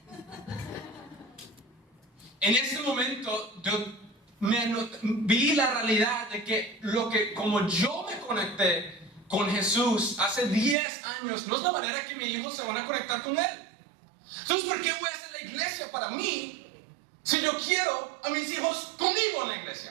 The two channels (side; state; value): left; drops out; at 10.8 s